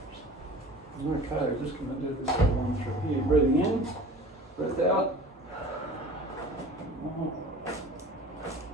Okay, we're just going to do this one through here. Breathing in, breath out.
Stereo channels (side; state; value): both; normal; correlation 0.42